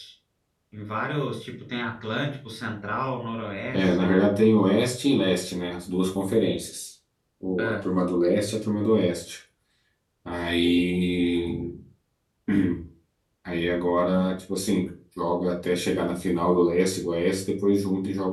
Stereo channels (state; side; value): identical; both; correlation 1.00